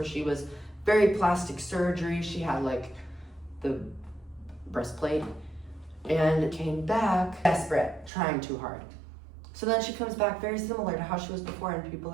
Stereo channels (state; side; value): drops out; left; at 8.1 s